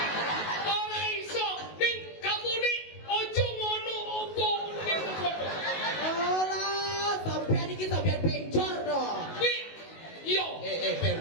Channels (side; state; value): right; late; 19 ms